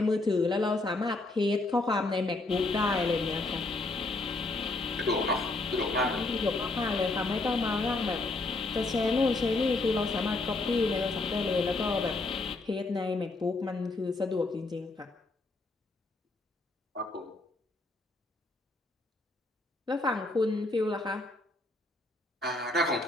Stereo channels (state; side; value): quieter; right; 3.1 dB